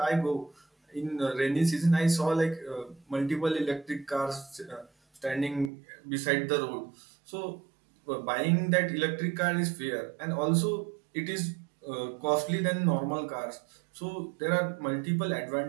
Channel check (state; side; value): drops out; left; at 5.7 s